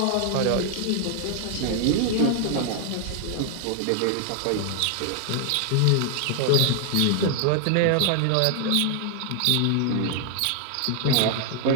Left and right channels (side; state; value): both; different; correlation 0.00